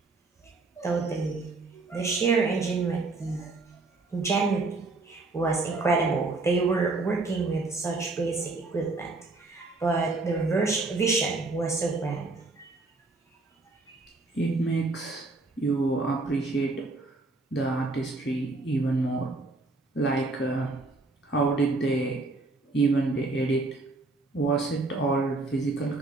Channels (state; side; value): quieter; left; 3.4 dB